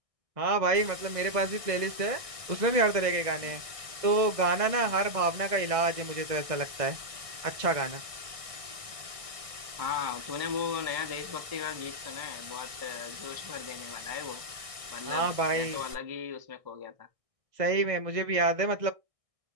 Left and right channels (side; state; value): left; late; 1.6 ms